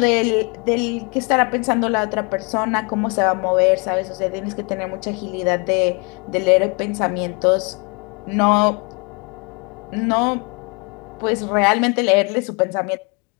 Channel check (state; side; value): quieter; right; 32.5 dB